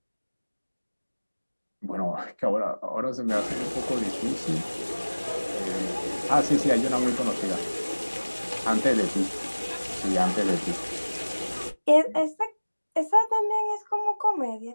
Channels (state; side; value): inverted; both; correlation -1.00